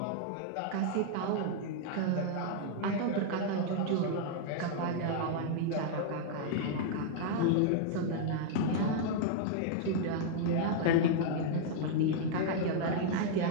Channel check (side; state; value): both; different; correlation -0.01